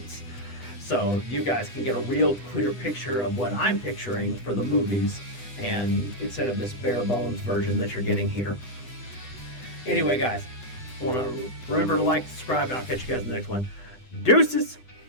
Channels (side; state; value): right; late; 8.0 ms